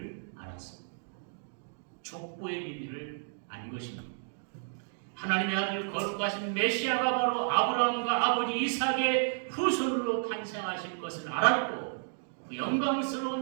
알았습니다. 족보의 비밀을 안 것입니다. 하나님의 아들 거룩하신 메시아가 바로 아브라함과 아버지 이삭의 후손으로 탄생하실 것을 알았고 그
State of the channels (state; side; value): silent; left; digital silence